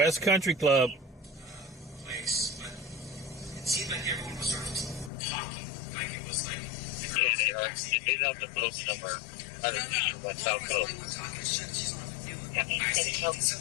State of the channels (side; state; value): right; drops out; at 5.1 s